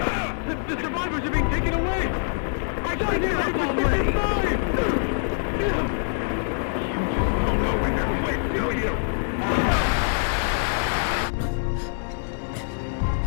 Sign it up already! You don't know when to quit, do you?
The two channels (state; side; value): silent; right; 62 dB below the other